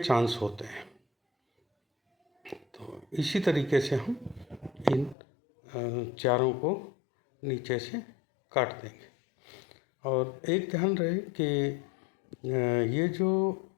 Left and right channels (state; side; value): drops out; right; at 5.2 s